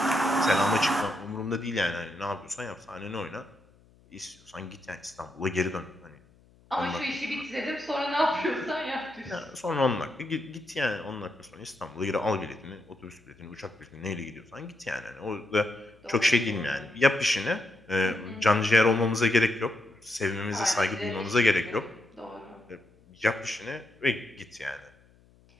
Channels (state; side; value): noise; left; hum, 29 dB below the sound